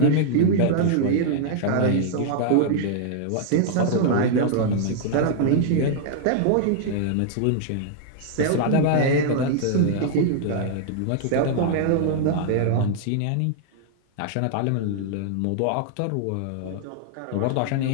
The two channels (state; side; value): different; both; correlation -0.01